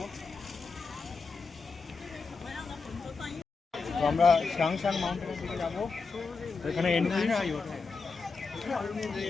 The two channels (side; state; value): right; quieter; 4.6 dB